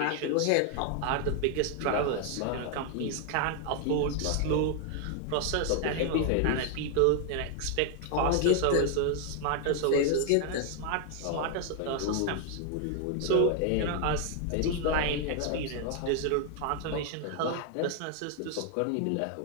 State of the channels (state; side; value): different; both; correlation 0.00